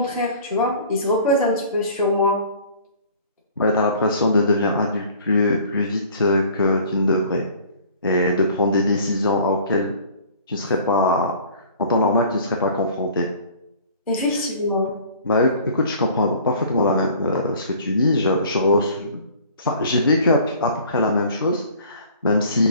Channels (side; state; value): both; inverted; correlation -0.49